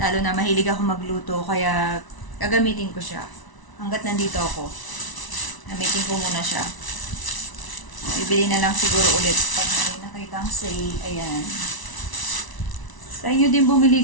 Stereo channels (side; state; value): right; late; 1.0 ms